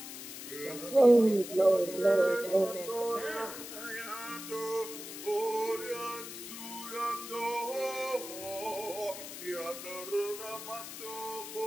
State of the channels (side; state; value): left; noise; hiss, 10 dB below the sound